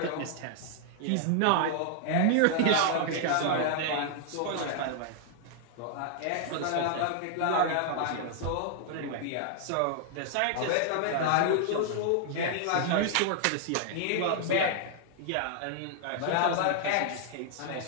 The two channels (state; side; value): different; both; correlation 0.00